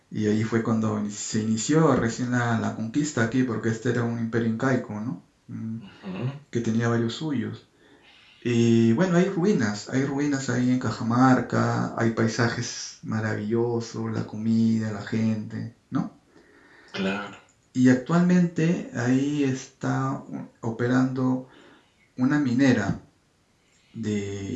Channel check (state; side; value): identical; both; correlation 1.00